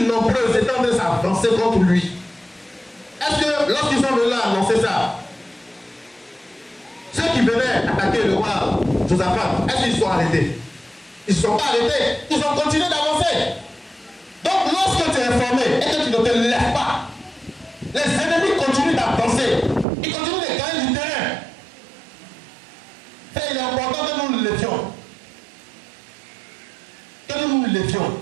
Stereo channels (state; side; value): drops out; left; at 19.9 s